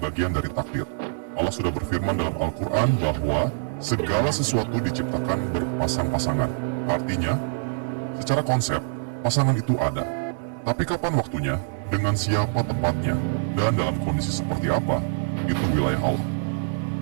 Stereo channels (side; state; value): left; silent; digital silence